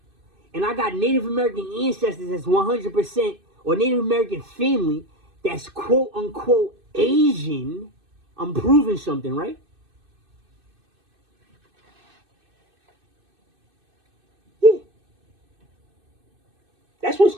and I got Native American ancestors that's 100%, or Native American family that's quote unquote Asian, I'm proving something, right? Yeah. That's what it's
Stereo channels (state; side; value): late; left; 2.6 ms